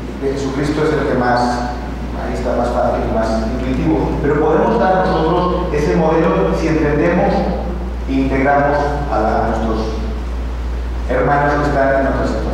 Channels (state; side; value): identical; both; correlation 1.00